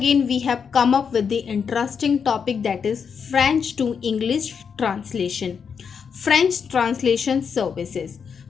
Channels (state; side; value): quieter; right; 6.5 dB